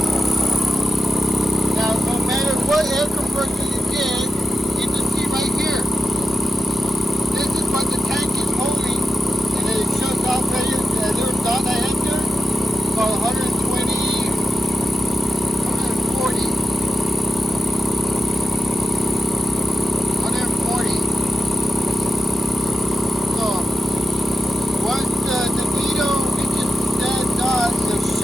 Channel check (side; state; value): both; normal; correlation 0.89